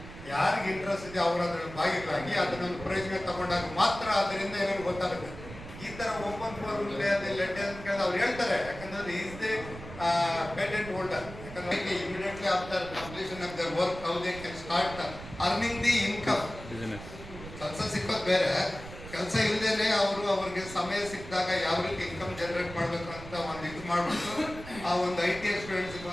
ಯಾರಿಗೆ ಇಂಟ್ರೆಸ್ಟ್ ಇದೆ ಅವರು ಅದರಲ್ಲಿ ಭಾಗಿಯಾಗಿ ಅದನ್ನೊಂದು ಪ್ರಯೋಜನ ತಗೊಂಡಾಗ ಮಾತ್ರ ಅದರಿಂದ ಏನೇನು ಗೊತ್ತಾಗುತ್ತೆ. ಈ ತರ ಓಪನ್ ಫೋರಮ್ ಲೆಟ್ ಅಂತ ಕೇಳಿದ್ರೆ ಅವ್ರು ಹೇಳ್ತಾರೆ, ಯಾಕಂದ್ರೆ ಈಸ್ ದಿ ಪೇಟೆಂಟ್ ಹೋಲ್ಡರ್. ಯಾಕಂದ್ರೆ immediately after completion of there work how they can start earning the income. ಕೆಲಸ ಸಿಕ್ಕೋದು ಬೇರೆ, ಕೆಲಸ ಇಲ್ಲದೇನೆ ಅವ್ರಿಗೆ ಸಮಯ ಸಿಕ್ಕಿದಾಗ ಯಾವ ರೀತಿ ಇನ್ಕಮ್ ಜನರೇಟ್ ಮಾಡಬೇಕು ಅಂತ ಒಂದು ಇದು ಮಾಡಿಬಿಟ್ಟು ಆ ಒಂದು ITI ಸ್ಟೂಡೆಂಟ್ಸ್ಗೆ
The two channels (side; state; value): right; noise; rumble, 13 dB below the sound